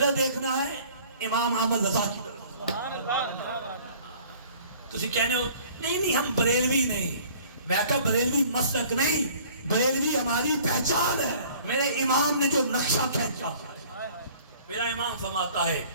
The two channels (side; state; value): both; inverted; correlation -0.52